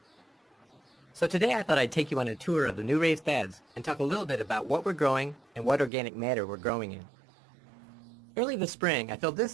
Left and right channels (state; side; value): drops out; left; at 5.9 s